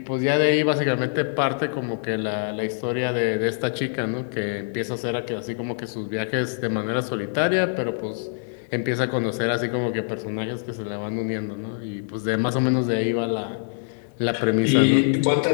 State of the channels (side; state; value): right; silent; digital silence